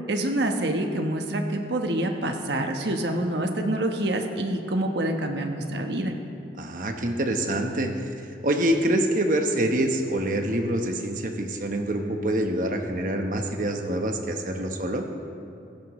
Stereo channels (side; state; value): both; normal; correlation 0.54